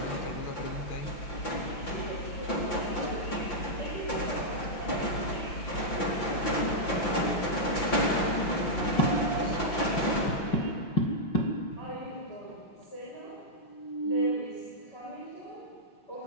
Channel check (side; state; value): right; late; 5.8 ms